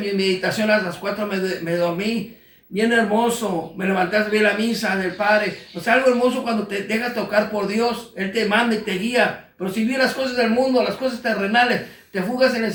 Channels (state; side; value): identical; both; correlation 1.00